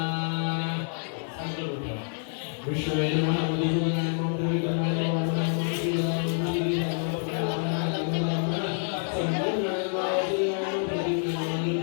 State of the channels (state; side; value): silent; right; digital silence